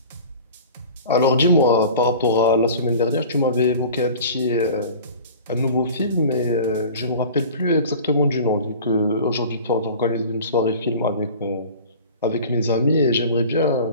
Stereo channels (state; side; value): inverted; both; correlation -0.41